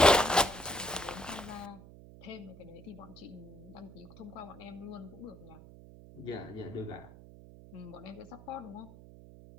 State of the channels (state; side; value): noise; right; hum, 18 dB below the sound